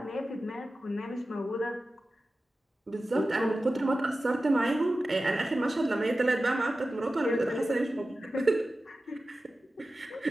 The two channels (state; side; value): normal; both; correlation 0.94